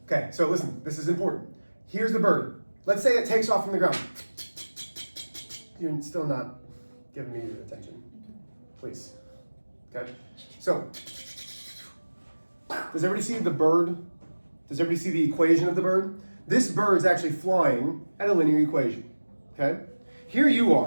Okay, so listen, this is important. Here's the bird. Let's say it takes off from the ground. You're still not giving me your attention. Please. Okay? So, does everybody see the bird? Does everybody see the equation of the bird? This bird's actually flying at a linear equation. Okay? Here you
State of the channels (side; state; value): both; inverted; correlation -1.00